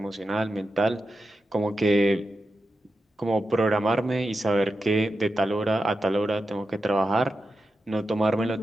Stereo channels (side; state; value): both; normal; correlation 0.90